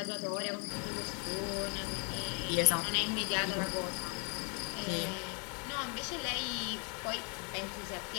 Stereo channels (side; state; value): right; quieter; 36.8 dB